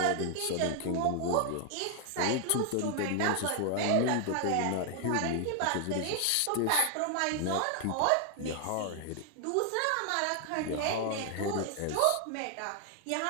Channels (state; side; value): different; both; correlation 0.00